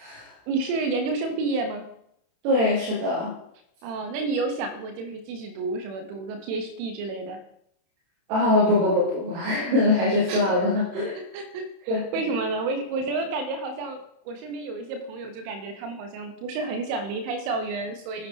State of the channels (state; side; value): late; left; 31 ms